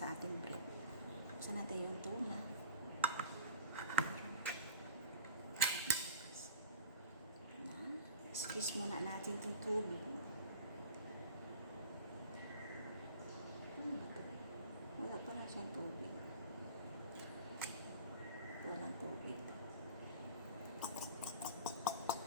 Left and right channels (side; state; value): both; inverted; correlation -0.44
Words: ating bread. Saan natin yung tuna? Squeeze muna natin itong tubig. Wala pa na siyang tubig. Walang tubig.